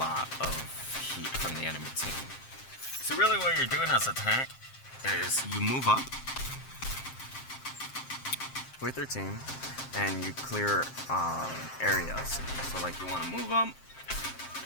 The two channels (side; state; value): right; late; 7.6 ms